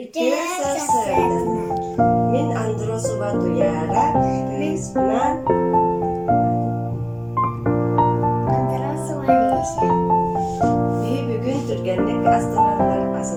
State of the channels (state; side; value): identical; both; correlation 1.00